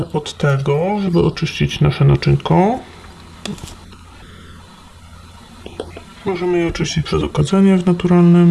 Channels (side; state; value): both; identical; correlation 1.00